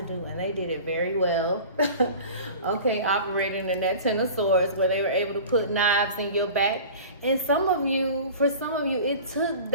do, and they did it very well. Okay, operating in that Ten of Swords, where they were able to put knives in your back. And for some of you, it took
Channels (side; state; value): both; inverted; correlation -0.39